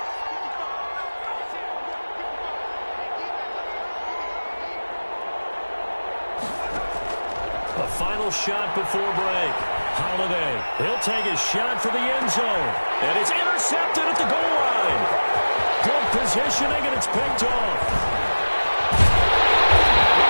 The final shot before break. Holiday, he'll take a shot for the end zone. And it's intercepted at the goal line. Good positioning, and it's picked off.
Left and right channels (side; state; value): both; inverted; correlation -1.00